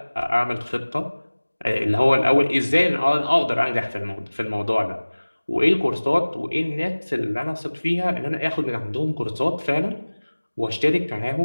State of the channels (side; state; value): both; inverted; correlation -1.00